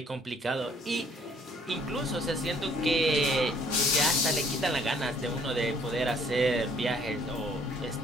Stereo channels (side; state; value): both; normal; correlation 0.61